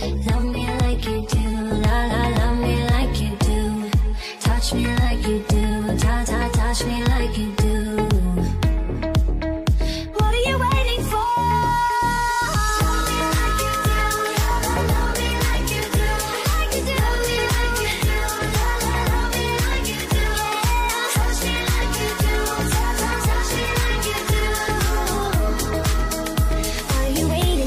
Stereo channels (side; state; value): both; identical; correlation 1.00